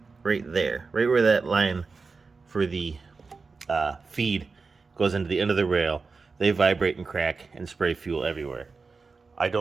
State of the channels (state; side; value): quieter; left; 4.4 dB